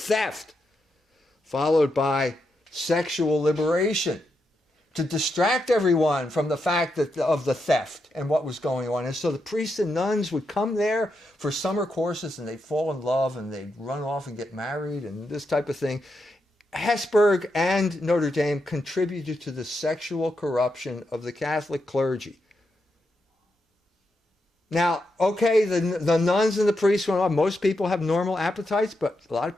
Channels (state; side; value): normal; both; correlation 0.84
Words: followed by sexual liberation, to distract everyone from the fact of the theft and what was going on. And so the priests and nuns would come there for summer courses, and they'd fall in love, and they'd run off and get married and this type of thing. Hesburgh and Notre Dame contributed to the sexual corruption of the Catholic clergy. Now, okay, the nuns and the priests went on. Most people have normal appetites, but a lot of